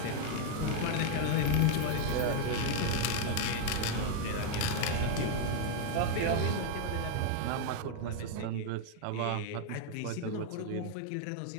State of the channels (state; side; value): different; both; correlation 0.01